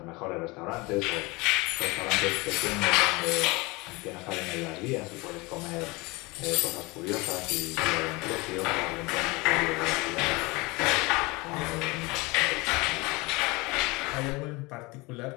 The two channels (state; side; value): quieter; right; 24.6 dB